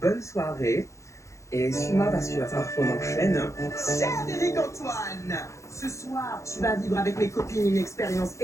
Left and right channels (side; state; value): right; late; 0.15 ms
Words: soirée. Et suis-moi parce qu'il va falloir qu'on enchaîne. Cher Eric Antoine, ce soir, tu vas vivre avec mes copines une expérience